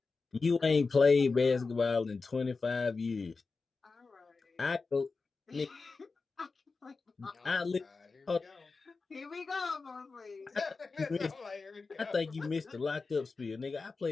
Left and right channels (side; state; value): right; quieter; 4.2 dB